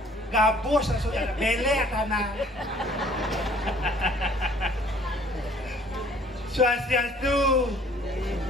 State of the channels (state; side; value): normal; both; correlation 0.56